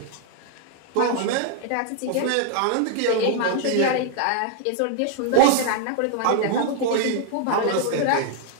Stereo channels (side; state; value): both; different; correlation 0.00